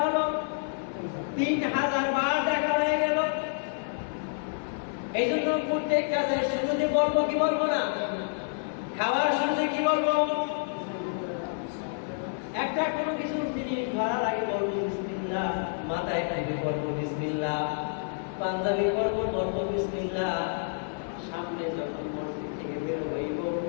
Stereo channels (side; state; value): right; silent; 59 dB below the other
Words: হলো? 3000 বার ডাকা হয়ে গেল। এই জন্য প্রত্যেক কাজের শুরুতে বলবো কি বলবো না? খাওয়ার শুরুতে কি বলবো? একটা কোনো কিছু জিনিস ধরার আগে বলবো বিসমিল্লাহ, মাথায় টাইপে বলবো বিসমিল্লাহ, পাঞ্জাবি বলবো বিসমিল্লাহ, সামনে যখন মসজিদ থেকে বের হইব